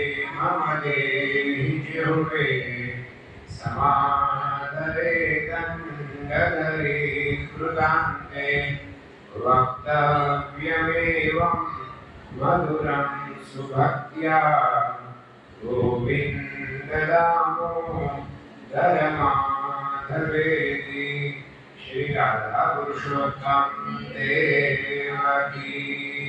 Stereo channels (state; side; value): identical; both; correlation 1.00